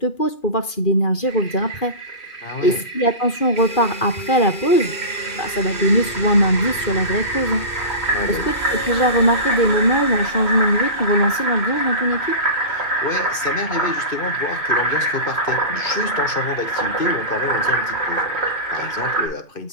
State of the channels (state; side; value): late; right; 2.4 ms